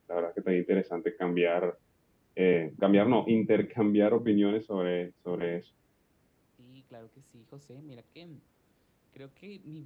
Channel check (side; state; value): both; identical; correlation 1.00